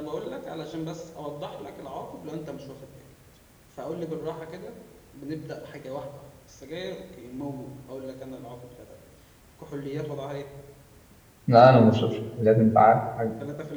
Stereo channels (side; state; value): both; identical; correlation 1.00